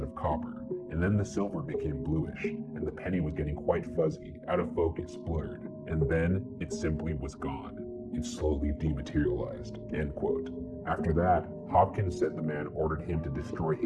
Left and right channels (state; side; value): identical; both; correlation 1.00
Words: of copper, and then the silver became bluish, and the penny was getting quite fuzzy, out of focus, blurred, and then it simply was gone. It slowly dematerialized," end quote. After that, Hopkins said the man ordered him to destroy